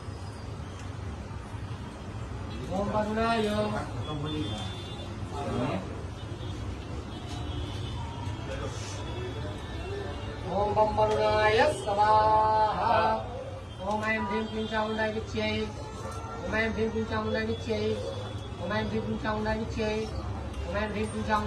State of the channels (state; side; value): identical; both; correlation 1.00